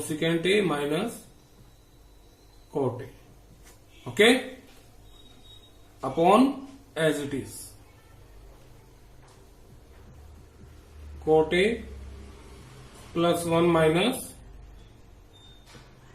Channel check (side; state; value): both; identical; correlation 1.00